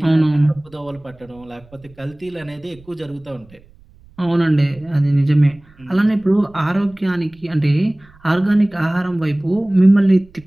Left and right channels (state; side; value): noise; right; rumble, 27 dB below the sound